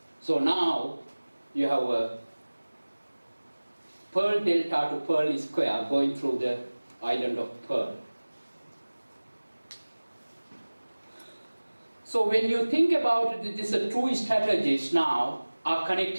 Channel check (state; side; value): inverted; both; correlation -1.00